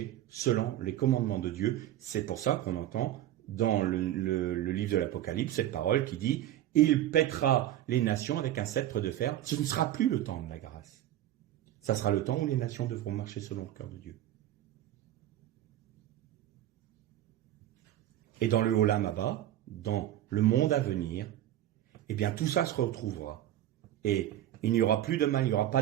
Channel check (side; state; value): left; quieter; 12.8 dB